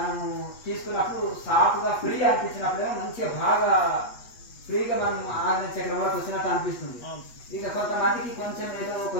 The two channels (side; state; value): right; late; 8.3 ms